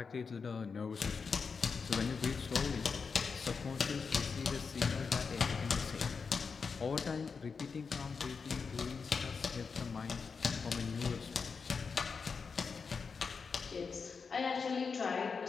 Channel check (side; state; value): right; quieter; 5.3 dB